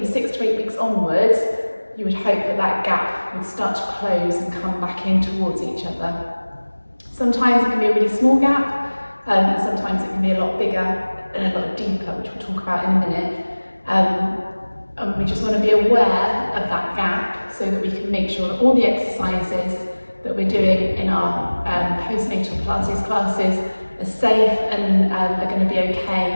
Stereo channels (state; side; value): inverted; both; correlation -1.00